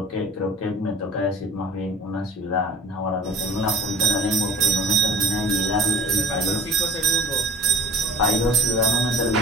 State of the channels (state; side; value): normal; both; correlation 0.43